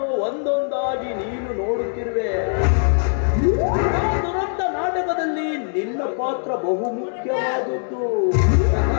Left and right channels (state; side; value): silent; right; digital silence